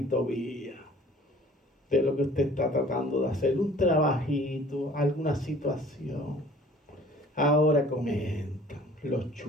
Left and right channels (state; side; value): normal; both; correlation 0.51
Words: Tobías de lo que usted está tratando de hacer, un trabajito, alguna situación. Ahora comentan los